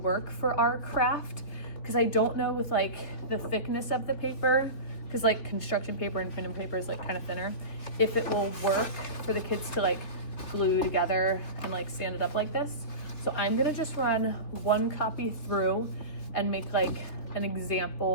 for our craft, because I don't know with like the thickness of the paper, because like construction paper and printing paper is like kind of thinner, if it will work for the kids to like glue together and like stand it up like this. So I'm gonna just run one copy through and make like an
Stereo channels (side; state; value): right; late; 3.4 ms